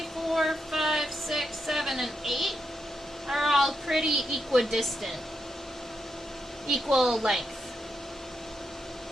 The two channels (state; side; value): normal; both; correlation 0.84